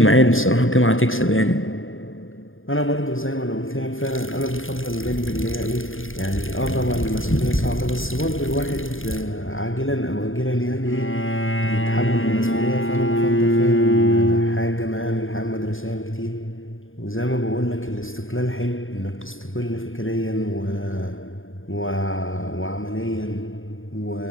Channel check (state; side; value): late; right; 0.59 ms